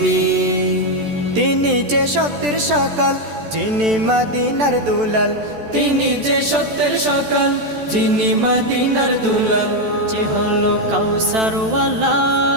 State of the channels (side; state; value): left; late; 14 ms